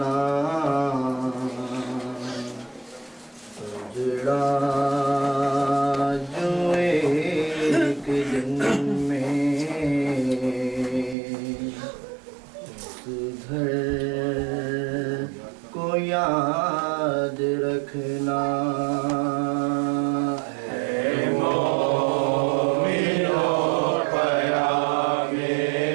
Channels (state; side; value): drops out; left; at 11.2 s